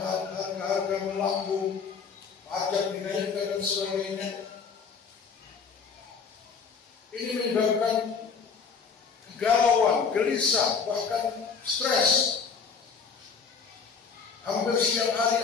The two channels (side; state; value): right; quieter; 5.7 dB